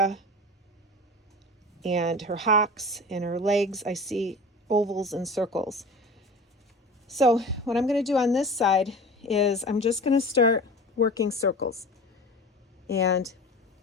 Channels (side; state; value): both; normal; correlation 0.36